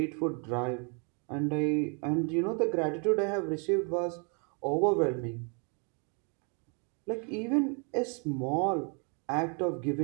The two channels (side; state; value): left; quieter; 37.9 dB